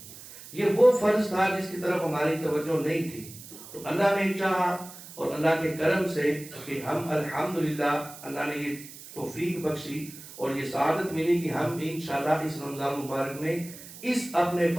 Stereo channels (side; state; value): right; noise; hiss, 16 dB below the sound